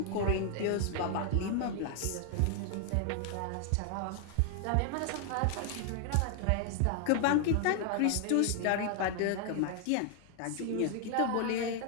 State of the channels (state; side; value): different; both; correlation 0.00